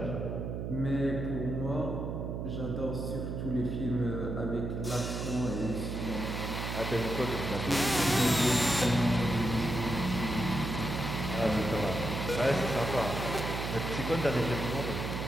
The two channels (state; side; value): noise; right; hum, 4 dB below the sound